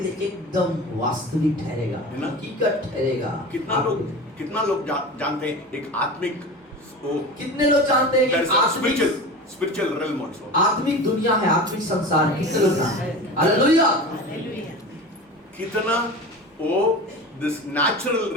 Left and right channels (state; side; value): normal; both; correlation 0.32